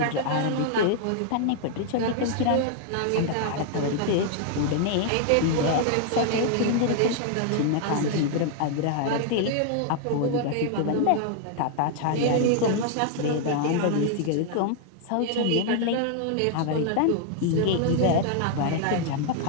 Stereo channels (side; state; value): both; different; correlation 0.00